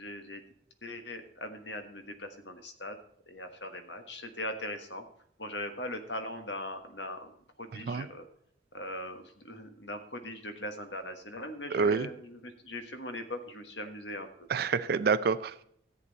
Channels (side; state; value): left; quieter; 3.1 dB